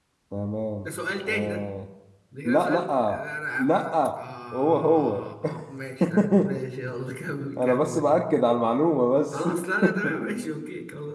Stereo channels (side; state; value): both; identical; correlation 1.00